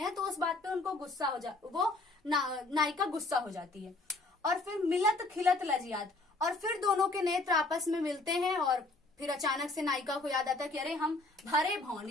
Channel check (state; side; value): quieter; right; 3.1 dB